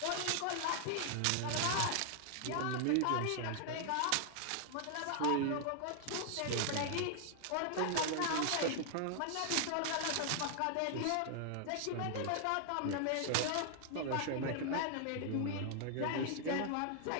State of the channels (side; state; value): both; different; correlation 0.00